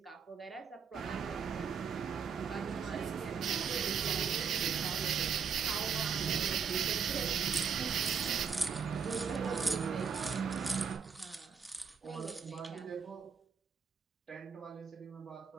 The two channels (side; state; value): left; quieter; 6.3 dB